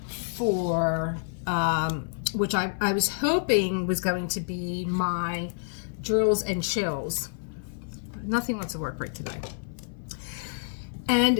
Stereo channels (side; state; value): right; silent; digital silence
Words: for which I was hoping was going to be my drills and chills. Nothing wants to work right today.